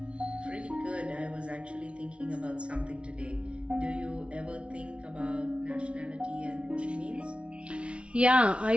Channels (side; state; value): left; late; 0.059 ms